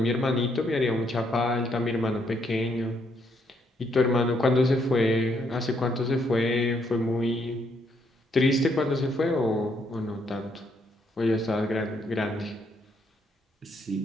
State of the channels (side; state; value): both; normal; correlation 0.73